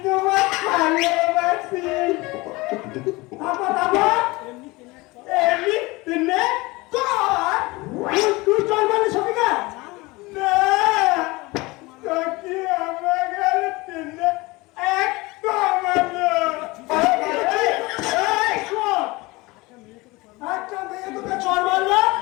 তোমার ভালোবাসি। তারপর এমনি তেনে কর। তুই চল মানে সবিকা না তোকে আমার গেলে তেনে একদম একটা মেয়ে তোকে চল মারলো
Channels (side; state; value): right; quieter; 22.8 dB